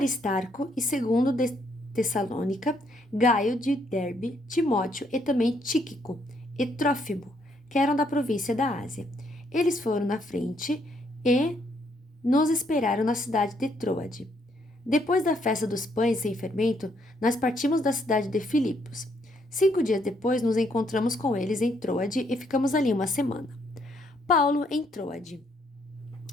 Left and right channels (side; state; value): both; normal; correlation 0.71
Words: e segundo de Tessalônica, Gaio de Derbe, Timóteo e também Tíquico e Trófimo, que eram da província da Ásia. Eles foram na frente e nos esperaram na cidade de Troade. Depois da festa dos pães sem fermento, nós partimos da cidade de Filipos. 5 dias depois, nos encontramos com eles em Troade e ficamos ali uma semana. Paulo em Troade.